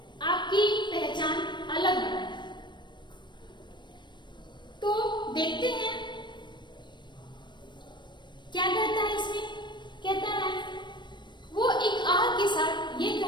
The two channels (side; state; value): right; late; 0.22 ms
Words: आपकी पहचान अलग बनाए। तो देखते हैं क्या कहता है इसमें। कहता है वो एक आह के साथ ये